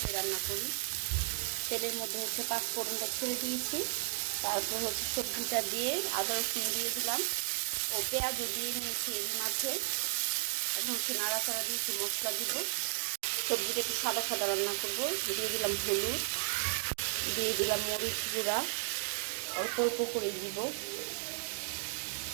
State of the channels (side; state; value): left; silent; digital silence